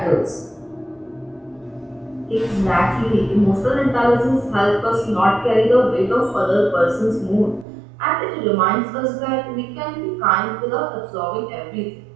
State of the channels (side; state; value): left; drops out; at 7.7 s